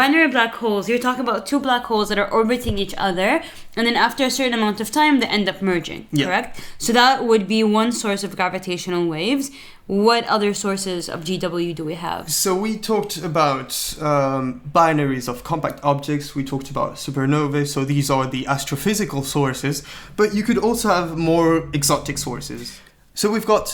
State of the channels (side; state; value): both; identical; correlation 1.00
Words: black holes, you're talking about two black holes that are orbiting each other, and then after a certain amount of time, they end up merging, correct? So that would be one source of gravitational waves. What other sources of GW do we have? So we talked about binaries of compact objects, we talked about supernovae, so these are the astrophysical sources, but you could also have more exotic sources. So we've